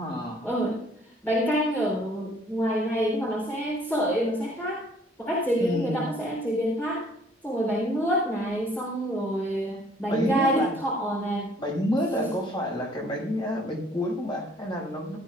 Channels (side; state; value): both; normal; correlation 0.60